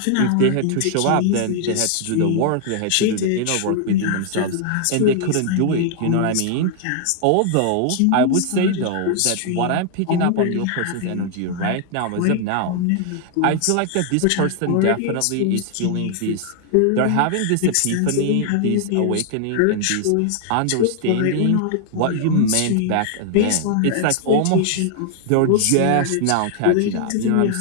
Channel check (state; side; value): different; both; correlation 0.00